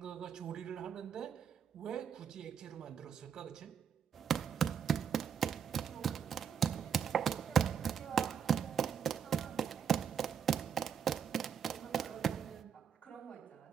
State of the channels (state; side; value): quieter; left; 7.6 dB